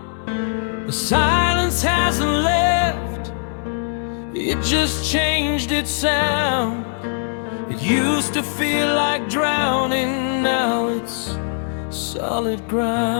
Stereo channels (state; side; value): silent; right; 65 dB below the other